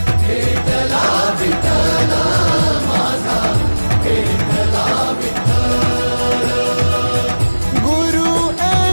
भेटला विठ्ठल माझा, भेटला विठ्ठल। गुरु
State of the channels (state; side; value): inverted; both; correlation -1.00